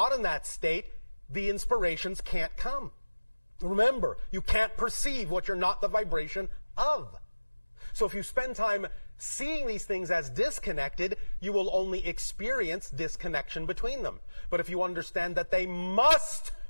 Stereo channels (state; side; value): inverted; both; correlation -1.00